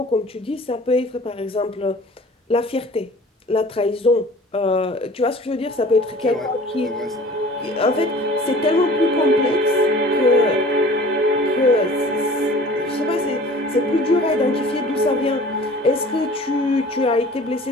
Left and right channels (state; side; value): normal; both; correlation 0.46